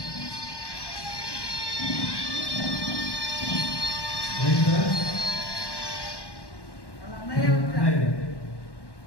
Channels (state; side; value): late; right; 1.1 ms